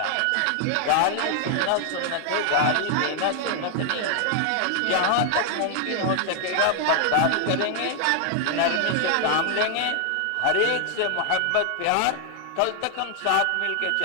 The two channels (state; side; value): different; both; correlation 0.00